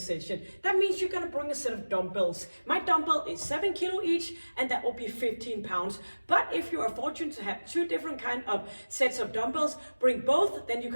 That means you're gonna bring a set of dumbbells. My dumbbell is 7 kilo each and that will be 15 pounds. But if you are fortunate to have two different kind of sets of dumbbells, bring both, then you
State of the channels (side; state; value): both; inverted; correlation -1.00